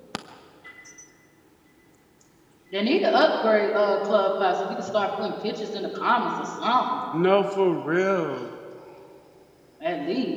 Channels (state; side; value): identical; both; correlation 1.00